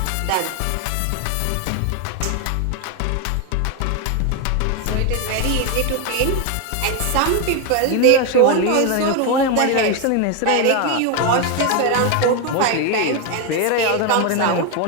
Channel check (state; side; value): different; both; correlation 0.02